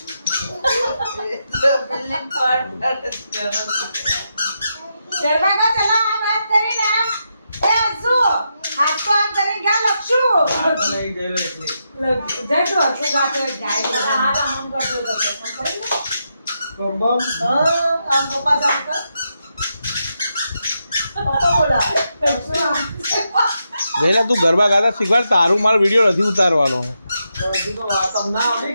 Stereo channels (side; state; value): both; inverted; correlation -0.84